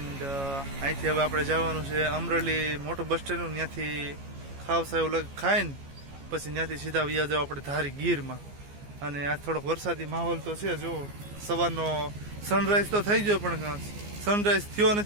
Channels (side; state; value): left; late; 14 ms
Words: અહીંથી હવે આપણે જવાનું છે અમરેલી મોટું બસ સ્ટેન્ડ, ત્યાંથી ખાવસા એવું ખાઈને પછી ત્યાંથી સીધા વ્યા જાવ આપણે ધારી ગીરમાં. અને આ થોડોક વરસાદી માહોલ તો છે જો. સવારનો સનરાઈઝ તો થઈ ગયો પણ સનરાઈઝ થયો